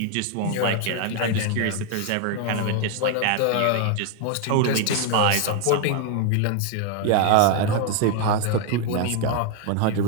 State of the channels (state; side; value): different; both; correlation 0.01